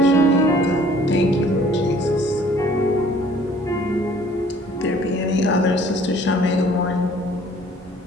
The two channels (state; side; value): normal; both; correlation 0.55